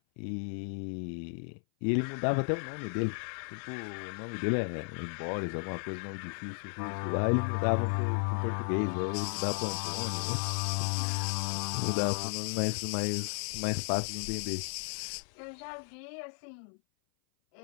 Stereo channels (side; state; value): right; silent; 55 dB below the other